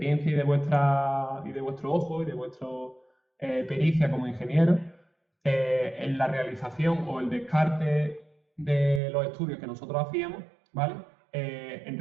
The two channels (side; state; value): left; drops out; at 9.0 s